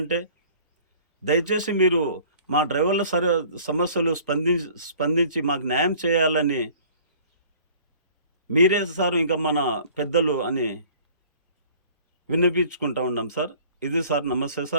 దయచేసి మీరు మా డ్రైవర్ల సమస్యలు స్పందించి మాకు న్యాయం చేయాలని మీరే సార్ ఇంకా మన పెద్దలు అని విన్నపించుకుంటా ఉన్నాం సార్. ఇది సార్. నమస్తే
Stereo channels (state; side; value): inverted; both; correlation -0.51